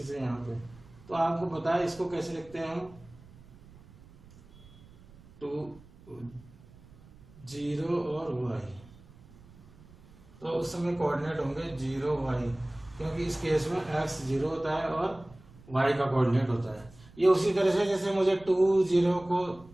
है यहाँ पे, तो आपको पता है इसको कैसे लिखते हैं हम, 2 0 और y। तो उस समय कोऑर्डिनेट होंगे 0 y, क्योंकि इस केस में x 0 होता है और y का कोऑर्डिनेट होता है। ये उसी तरह से जैसे मुझे 2 0 को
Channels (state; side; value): noise; right; rumble, 23 dB below the sound